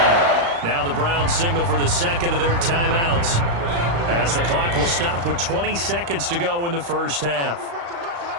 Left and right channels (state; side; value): late; left; 35 ms